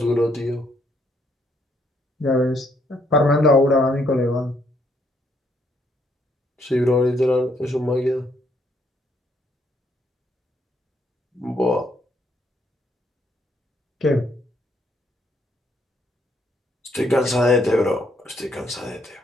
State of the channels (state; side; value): normal; both; correlation 0.71